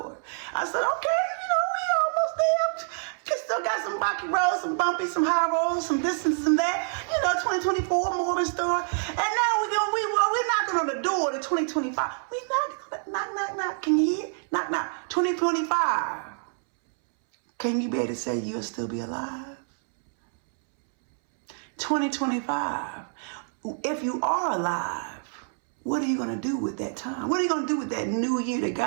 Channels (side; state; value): left; silent; 60 dB below the other